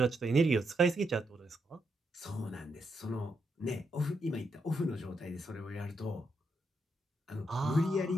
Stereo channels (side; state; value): both; normal; correlation 0.80